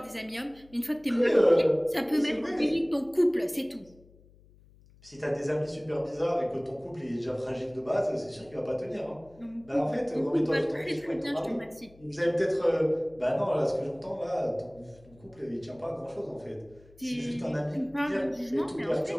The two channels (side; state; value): left; noise; hum, 26 dB below the sound